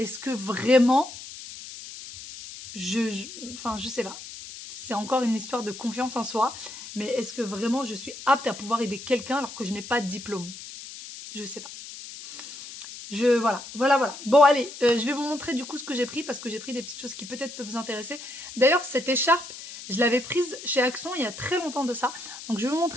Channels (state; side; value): noise; left; hiss, 13 dB below the sound